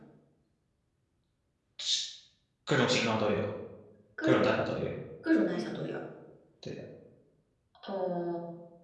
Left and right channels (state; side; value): identical; both; correlation 1.00